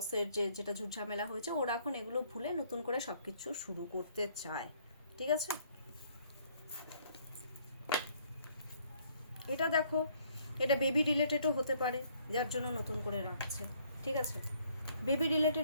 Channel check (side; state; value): both; inverted; correlation -0.65